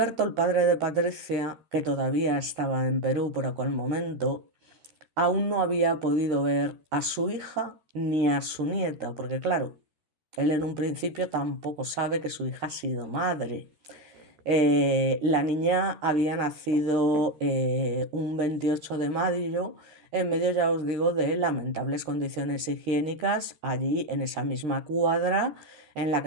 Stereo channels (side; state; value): left; late; 13 ms